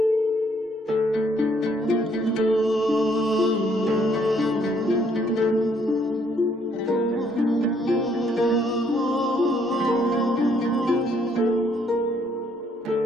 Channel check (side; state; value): both; normal; correlation 0.67